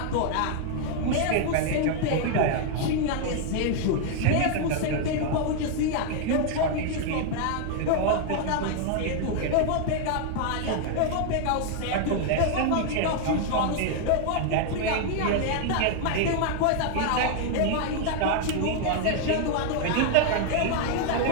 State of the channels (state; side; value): different; both; correlation 0.00